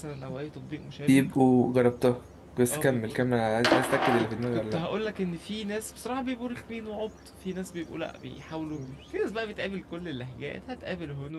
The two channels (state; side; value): identical; both; correlation 1.00